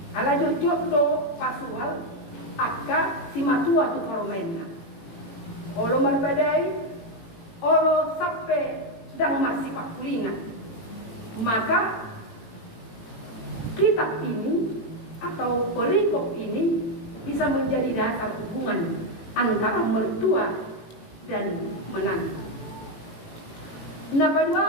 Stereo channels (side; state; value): right; late; 18 ms